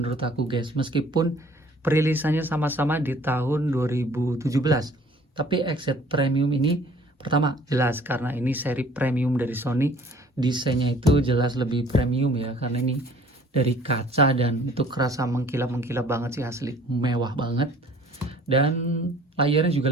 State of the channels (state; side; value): normal; both; correlation 0.53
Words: aku guys. Meskipun perilisannya sama-sama di tahun 2017. Tapi XZ Premium ini pertama jelas karena ini seri premium dari Sony. Desainnya itu jelas lebih premium ya, karena ini dari kaca dan itu kerasa mengkilap-mengkilap banget sih, asli mewah banget. Dan layarnya